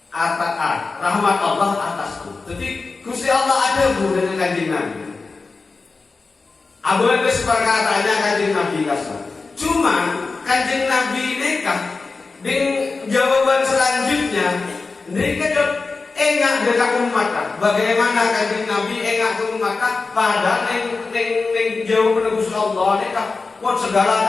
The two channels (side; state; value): right; quieter; 4.1 dB